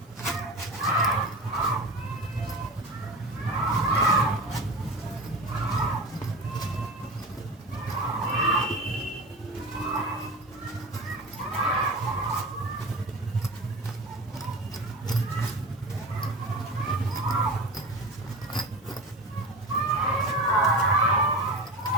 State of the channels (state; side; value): normal; both; correlation 0.30